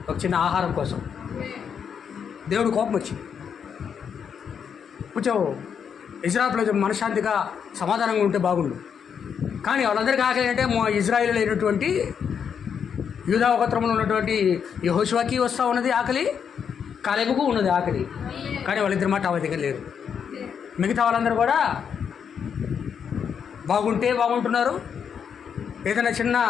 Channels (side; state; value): right; quieter; 7.3 dB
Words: ఒక చిన్న ఆహారం కోసం దేవుడు కోపం వచ్చింది. కొంచెం ఇజ్రాయెల్ ప్రజలు మనశ్శాంతిగా సమాధానంగా ఉంటే బాగుండు. కానీ వాళ్ళందరికీ ఆకలి అంటే ఇజ్రాయేల్ అయినటువంటి యూదా గోత్రంలో ఉన్నటువంటి యెహోషువకి వస్తూ ఉన్నది ఆకలి, కాలేబుకు ఉన్నది ఆకలి. కానీ వాళ్ళిద్దరి మాట ఆ దగ్గర లేరు. మిగతా వాళ్ళందరూ కూడా బాగుంటున్నారు. ఏదైనా చిన్న